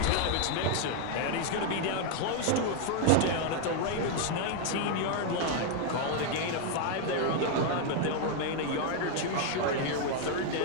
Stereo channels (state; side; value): different; both; correlation 0.00